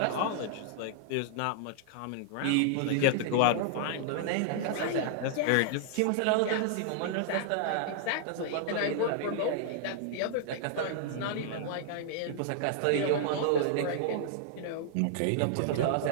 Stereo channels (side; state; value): both; different; correlation -0.01